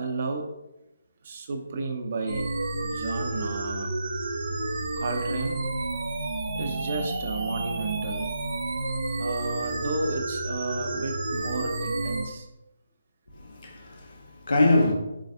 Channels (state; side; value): inverted; both; correlation -0.83